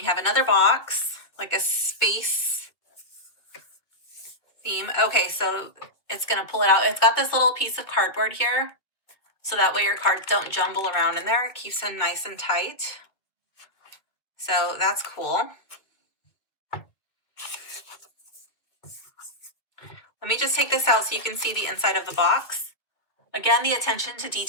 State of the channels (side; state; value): right; late; 2.1 ms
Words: have another box, like a space theme. Okay, so it's gonna pull it out. It's got this little piece of cardboard here, so that way your cards don't jumble around in there. It keeps them nice and tight. So that's cool. Let me just take this out so you can see the inside of the box. Again, the attention to